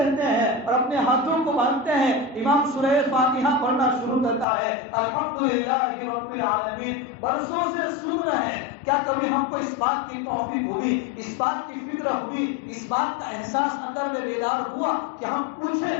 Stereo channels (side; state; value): right; drops out; at 4.5 s